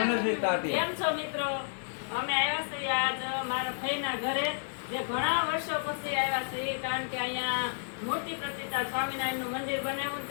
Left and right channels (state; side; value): silent; right; 57 dB below the other